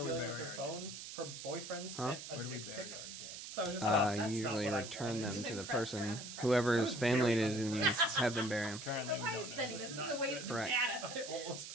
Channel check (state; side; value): noise; right; hiss, 10 dB below the sound